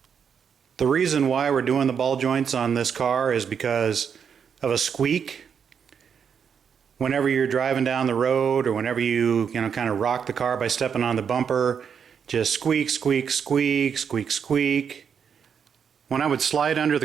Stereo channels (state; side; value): quieter; left; 7.1 dB